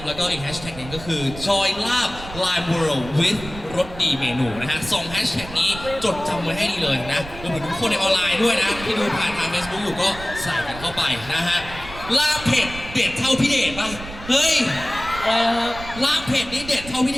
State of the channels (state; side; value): noise; right; rumble, 13 dB below the sound